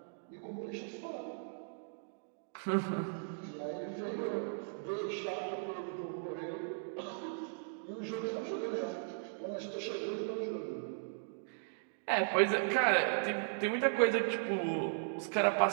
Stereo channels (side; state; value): left; silent; digital silence